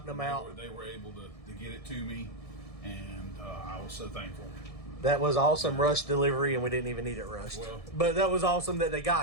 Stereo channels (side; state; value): right; late; 1.6 ms